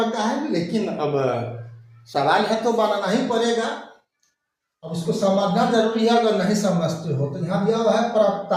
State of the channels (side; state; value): both; identical; correlation 1.00